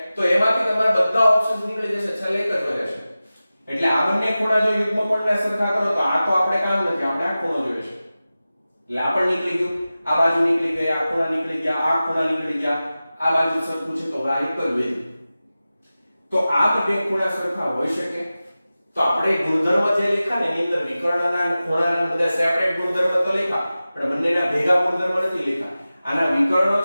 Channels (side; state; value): both; inverted; correlation -0.95